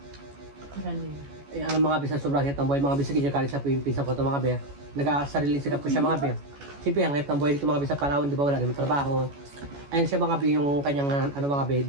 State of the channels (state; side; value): late; left; 14 ms